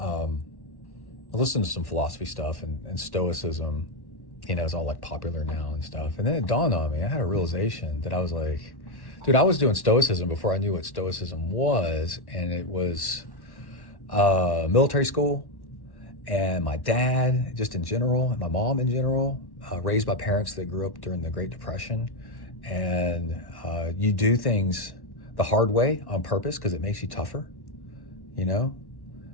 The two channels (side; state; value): right; late; 1.1 ms